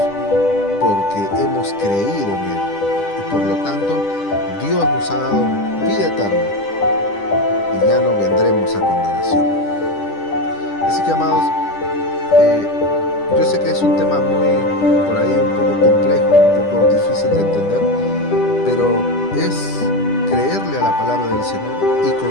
porque hemos creído en Él y por lo tanto Dios nos ha dado vida eterna y ya no vendremos a condenación. Así que, amados, yo sé que es un tema muy, por ahí, un poco complejo, un poco difícil de entender, pero es creerle a la palabra del Señor y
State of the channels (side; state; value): right; late; 10 ms